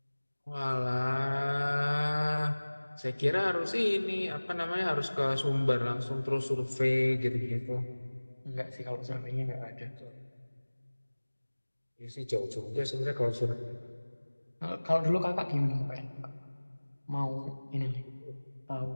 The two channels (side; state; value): both; inverted; correlation -1.00